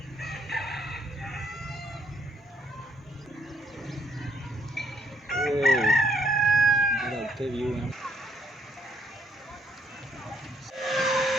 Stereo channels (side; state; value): both; normal; correlation 0.69